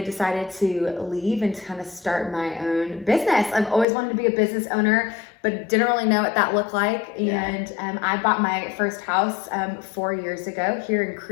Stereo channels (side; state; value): right; drops out; at 3.9 s